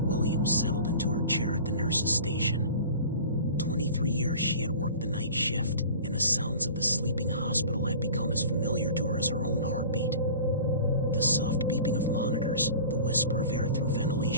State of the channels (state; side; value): inverted; both; correlation -0.42